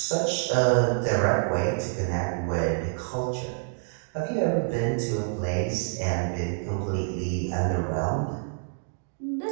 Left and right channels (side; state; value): left; silent; digital silence